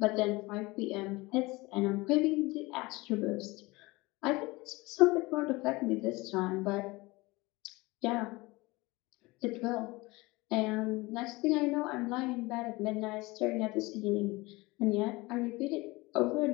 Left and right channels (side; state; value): right; quieter; 22.5 dB